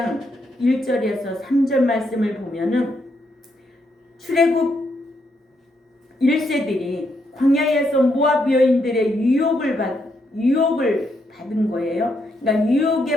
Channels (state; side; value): normal; both; correlation 0.78